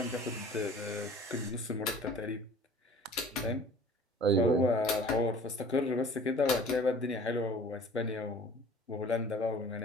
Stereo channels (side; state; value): both; normal; correlation 0.47